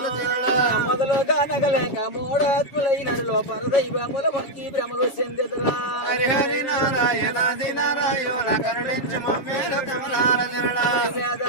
చరణ మొదలుగా నగలేక మోడాత్ములైనలో పరదైవముల మొక్కి భ్రమలు చెందెదురా హరి హరి నారాయణ ఆది నారాయణ కరుణించు మమ్మేలు కమలాల చరణ వేద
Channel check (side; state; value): right; late; 7.2 ms